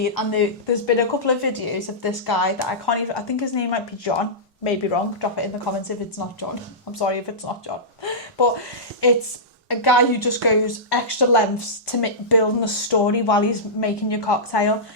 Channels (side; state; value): both; normal; correlation -0.16